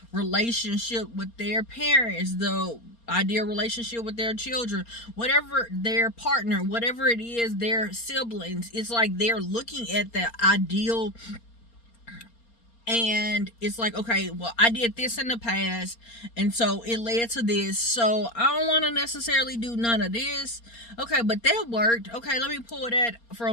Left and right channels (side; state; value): right; late; 4.3 ms